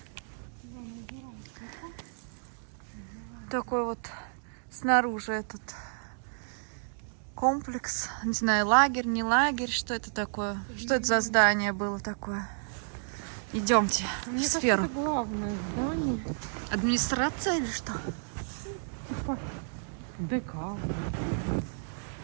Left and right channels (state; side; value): silent; left; digital silence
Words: Такой вот снаружи этот комплекс. Не знаю, лагерь, не лагерь. Что это такое? Что это за здание было такое? Идемте в Мне кажется, сферу. это главное здание. Администрация или что? Типа ДК.